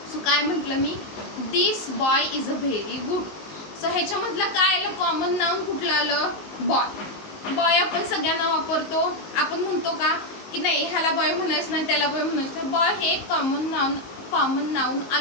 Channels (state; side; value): late; right; 19 ms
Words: So काय म्हटलं मी, this boy is a very good. So ह्याच्यामधलं काय आलं, कॉमन नाऊन कुठलं आलं, बॉय. बॉय आपण सगळ्यांना वापरतो. आपण म्हणतो का की नाही ह्याला बॉय म्हणायचं नाही, त्याला बॉय म्हणायचं. बॉय हे कॉमन नाऊन